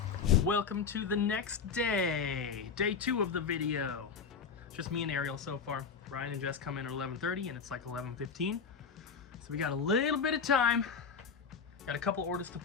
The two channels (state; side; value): quieter; right; 5.9 dB